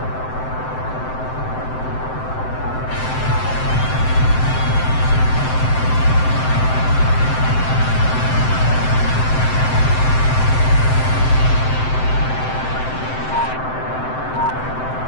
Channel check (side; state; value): right; late; 7.8 ms